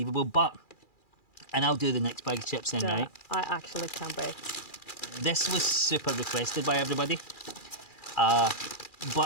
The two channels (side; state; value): right; late; 2.4 ms